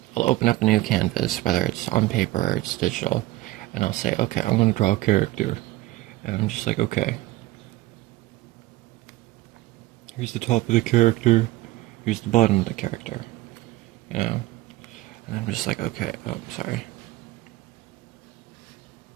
I'll open up a new canvas, whether it's on paper or it's digital, and I'll say, okay, I'm going to draw a character. And I'm just like, okay, here's the top of the character, here's the bottom of the character, you know? And I'm just like, okay, oh, I'm sorry.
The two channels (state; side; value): quieter; left; 17.7 dB